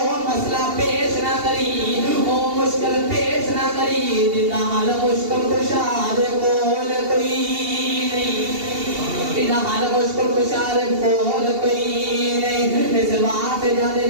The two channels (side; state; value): left; late; 2.8 ms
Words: مسئلہ پیش نہ کری وہ مشکل پیش نہ کری جنہ حال مشکل کشاد کول کوئی نہیں جنہ حال مشکل کشاد کول کوئی نہیں اس بات جانے